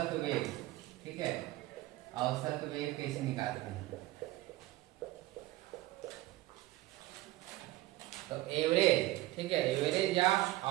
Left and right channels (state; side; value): quieter; left; 17.3 dB